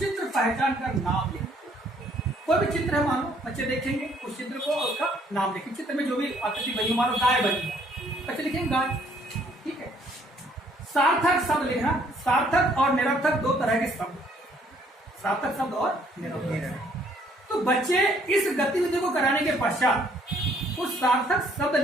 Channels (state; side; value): normal; both; correlation 0.64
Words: पहचान कर नाम लिखना। कोई भी चित्र है, मानो बच्चे देखेंगे उस चित्र को और उसका नाम लिखेंगे। चित्र में जो भी आकृति बनी, मानो गाय बनी, बच्चे लिखेंगे गाय। ठीक है, सार्थक शब्द लिखना। सार्थक और निरर्थक दो तरह के शब्द, सार्थक शब्द और निरर्थक। तो बच्चे इस गतिविधि को कराने के पश्चात उस सार्थक शब्द